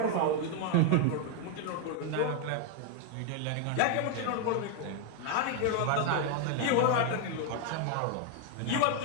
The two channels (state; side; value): different; both; correlation 0.00